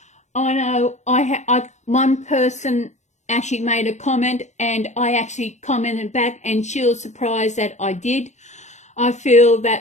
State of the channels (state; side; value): late; right; 0.34 ms